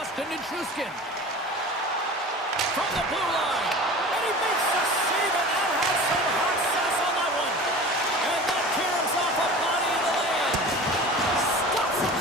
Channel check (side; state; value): both; normal; correlation 0.37